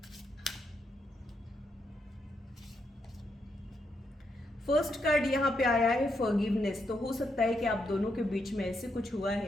फर्स्ट कार्ड यहाँ पे आया है फॉरगिवनेस। तो हो सकता है कि आप दोनों के बीच में ऐसे कुछ हुआ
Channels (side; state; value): both; normal; correlation 0.80